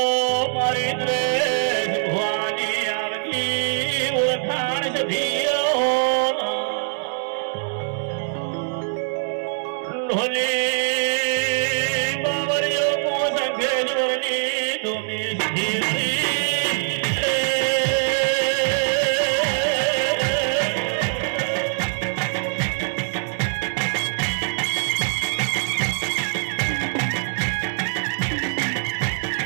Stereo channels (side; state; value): left; silent; digital silence